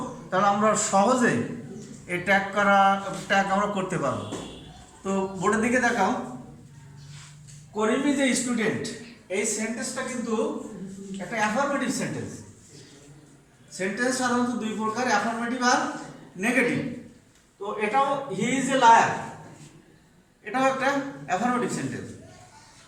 তাহলে আমরা সহজে এই ট্যাগ আমরা করতে পারবো। তো বোর্ডের দিকে দেখাও। করিম ইজ এ স্টুডেন্ট, এই সেন্টেন্সটা কিন্তু একটা অ্যাফার্মেটিভ সেন্টেন্স। সেন্টেন্স সাধারণত দুই প্রকার, অ্যাফার্মেটিভ আর নেগেটিভ। তো এটাও হি ইজ এ লায়ার, এটাও একটা অ্যাফার্মেটিভ সেন্টেন্স।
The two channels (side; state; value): both; identical; correlation 1.00